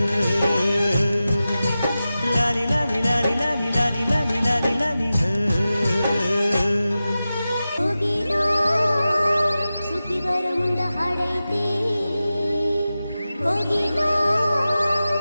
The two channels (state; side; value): inverted; both; correlation -0.94